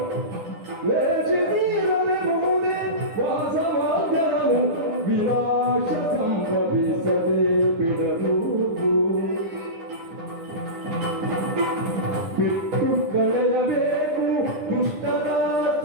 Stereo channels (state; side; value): late; left; 9.9 ms